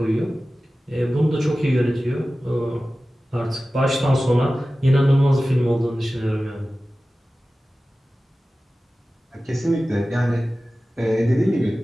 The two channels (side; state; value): both; normal; correlation 0.96